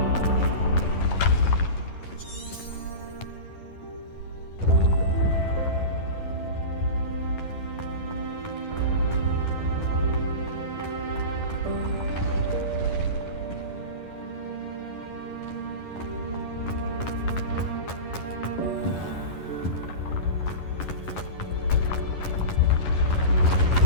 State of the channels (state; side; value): late; right; 11 ms